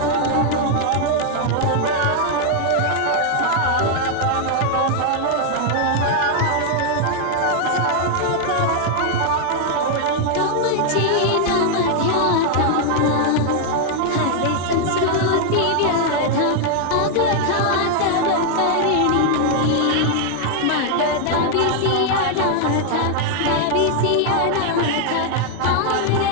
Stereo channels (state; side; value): different; both; correlation 0.00